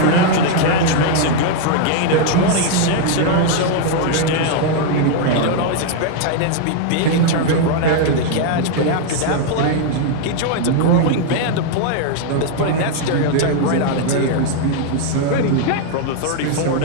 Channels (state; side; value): different; both; correlation 0.00